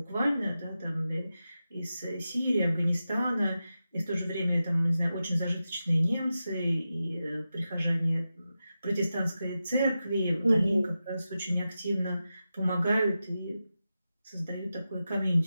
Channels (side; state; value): both; inverted; correlation -0.91